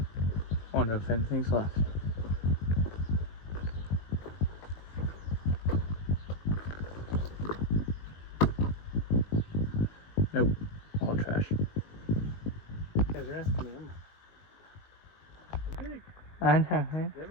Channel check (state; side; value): late; right; 19 ms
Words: Wonder if anything's left. Nope. All trash. Yeah, they're asking me. Big. I know, right?